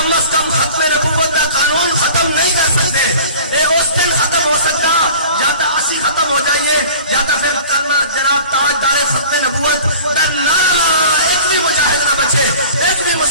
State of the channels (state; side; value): inverted; both; correlation -0.44